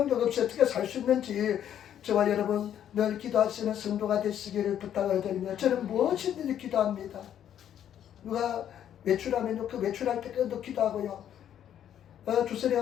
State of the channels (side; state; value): right; quieter; 10.1 dB